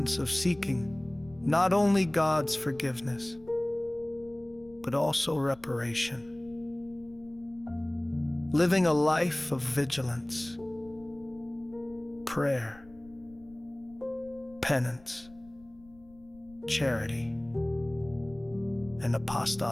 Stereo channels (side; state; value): left; noise; rumble, 24 dB below the sound